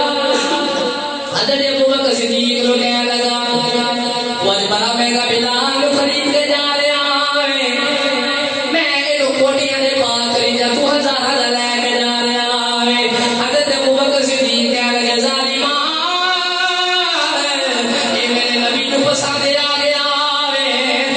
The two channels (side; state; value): both; identical; correlation 1.00